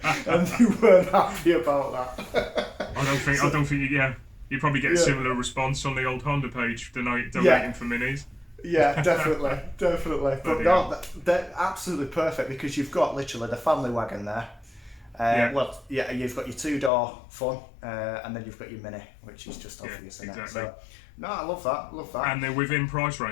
and they weren't happy about that. I don't think. You probably get a similar response on the old Honda page donating for minis. Yeah, definitely. But no, they're absolutely perfect because you've got literally the family wagon there. You've got your 2-door fun, and then you've got your Mini, which is just obvious. Exactly. So, no, I love that. And they're within price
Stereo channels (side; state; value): right; drops out; at 16.9 s